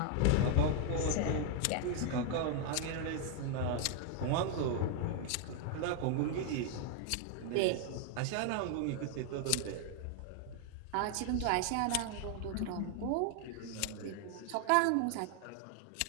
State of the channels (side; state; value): both; different; correlation 0.00